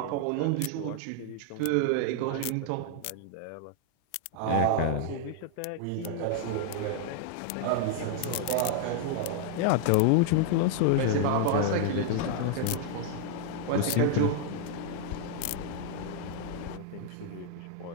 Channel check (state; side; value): different; both; correlation 0.00